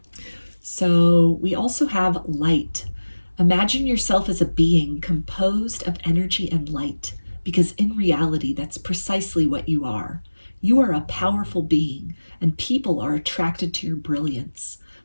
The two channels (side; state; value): both; inverted; correlation -1.00